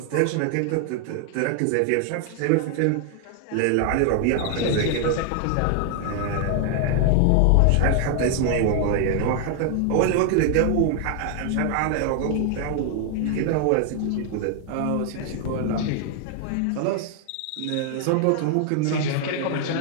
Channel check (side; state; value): both; different; correlation 0.00